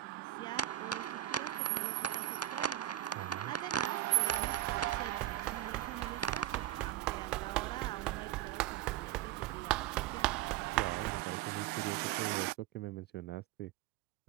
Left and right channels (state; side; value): quieter; left; 13.8 dB